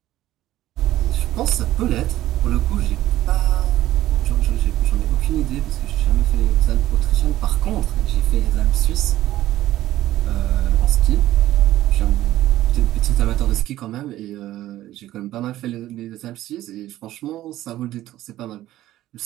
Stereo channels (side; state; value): left; quieter; 14.5 dB